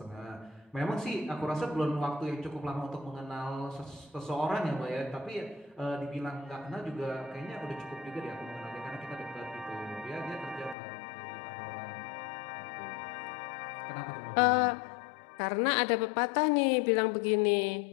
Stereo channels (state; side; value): drops out; right; at 10.8 s